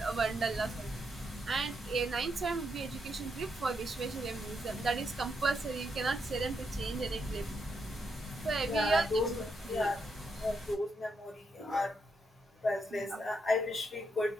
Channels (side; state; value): both; normal; correlation 0.80